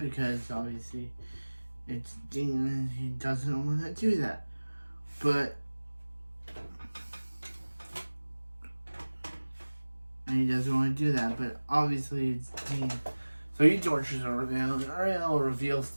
obviously it's Dean and he doesn't want to do that. But obviously it's Dean. So he tortures Uriel, and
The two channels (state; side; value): inverted; both; correlation -1.00